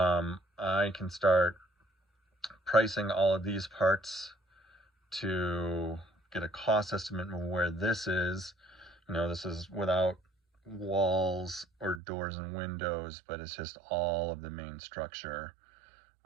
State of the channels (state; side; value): drops out; left; at 12.0 s